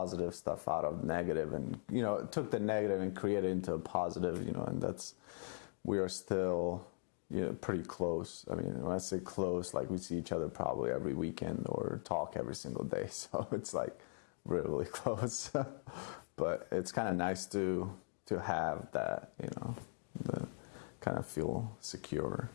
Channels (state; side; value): silent; right; digital silence